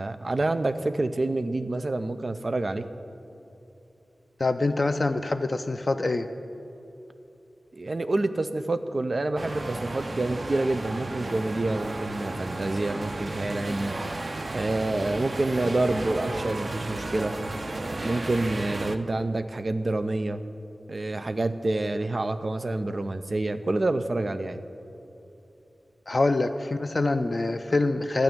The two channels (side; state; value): both; normal; correlation 0.95